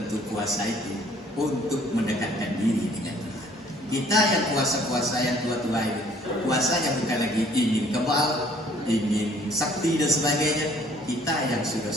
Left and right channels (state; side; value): normal; both; correlation 0.58